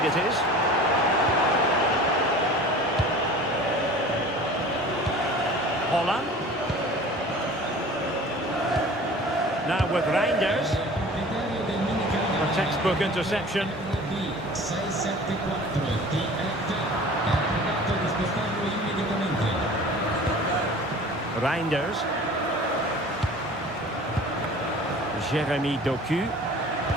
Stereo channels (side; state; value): both; normal; correlation 0.43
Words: it is. Holland. Now with Reinders. A textbook interception. Reinders. Jeremy Doku.